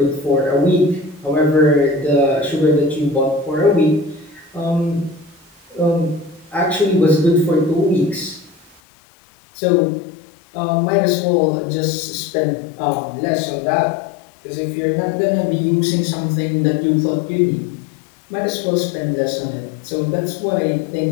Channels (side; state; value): right; drops out; at 8.8 s